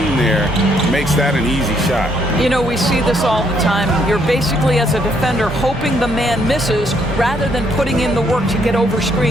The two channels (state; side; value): normal; both; correlation 0.71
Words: there makes that an easy shot. You know, we see this all the time. You're basically, as a defender, hoping the man misses rather than putting in the work to get over